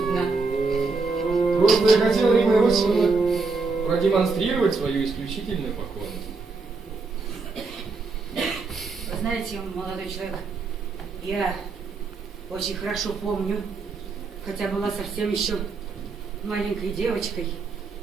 Просто я хотел, Ирина Иосифовна, продемонстрировать свою исключительную покорность. Вы знаете, молодой человек, я очень хорошо помню, хотя была совсем еще маленькой девочкой,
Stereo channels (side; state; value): left; quieter; 4.1 dB